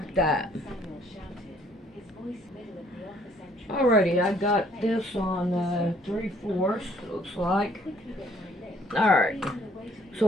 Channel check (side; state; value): both; normal; correlation 0.62